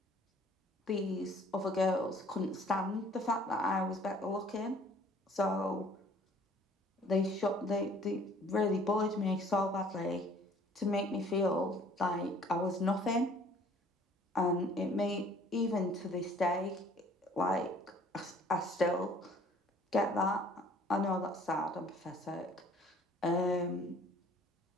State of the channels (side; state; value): both; normal; correlation 0.55